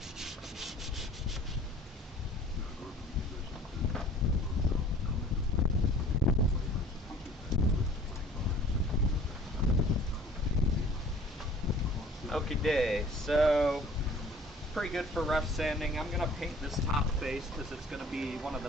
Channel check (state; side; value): normal; both; correlation 0.50